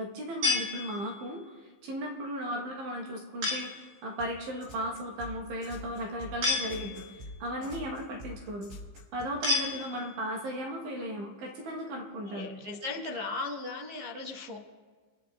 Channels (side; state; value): left; late; 15 ms